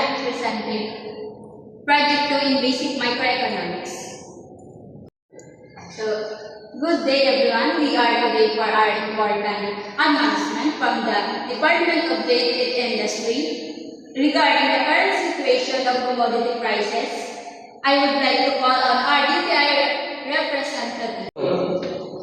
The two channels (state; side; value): identical; both; correlation 1.00